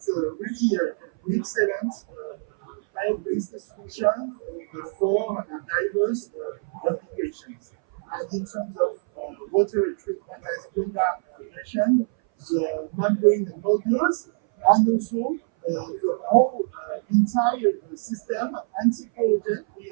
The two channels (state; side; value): silent; left; 59 dB below the other